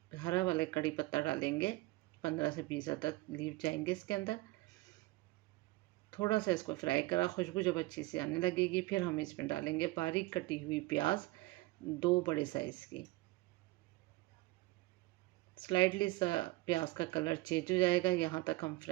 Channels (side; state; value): left; quieter; 20.3 dB